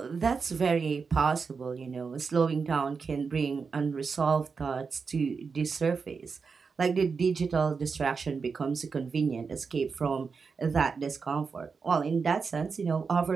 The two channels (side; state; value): left; quieter; 5.2 dB